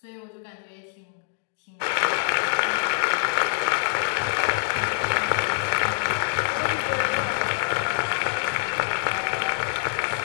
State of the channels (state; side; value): silent; right; digital silence